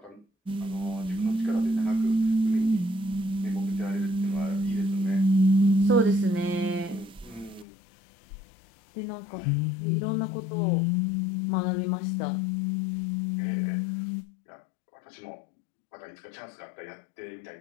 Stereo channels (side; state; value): right; drops out; at 7.7 s